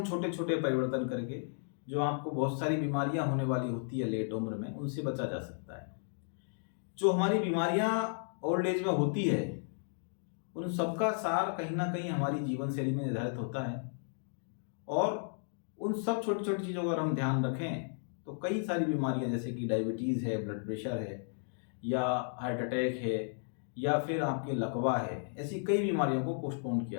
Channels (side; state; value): right; silent; digital silence